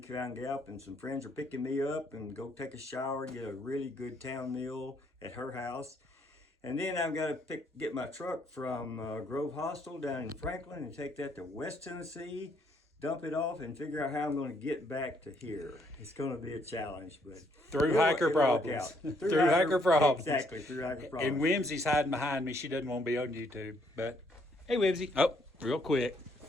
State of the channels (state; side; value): normal; both; correlation 0.69